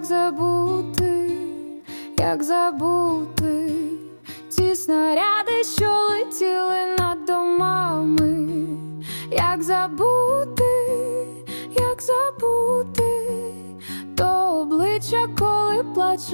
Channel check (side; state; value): both; inverted; correlation -1.00